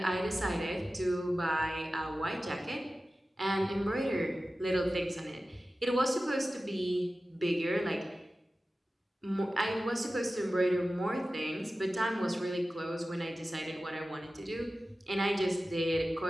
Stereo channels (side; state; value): both; normal; correlation 0.95